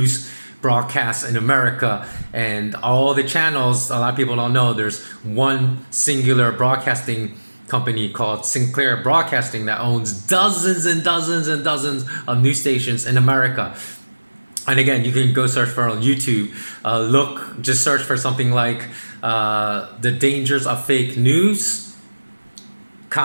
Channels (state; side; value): inverted; both; correlation -1.00